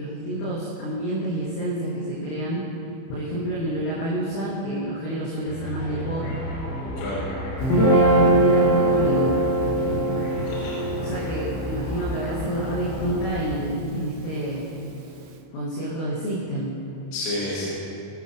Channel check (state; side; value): late; right; 31 ms